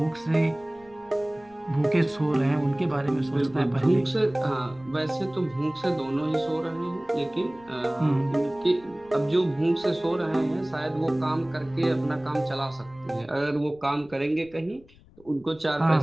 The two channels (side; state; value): left; noise; rumble, 26 dB below the sound